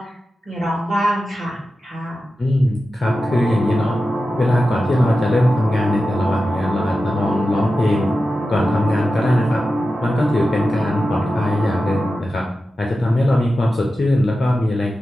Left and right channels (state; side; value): normal; both; correlation 0.92